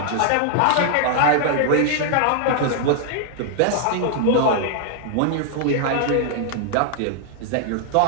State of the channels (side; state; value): both; different; correlation 0.00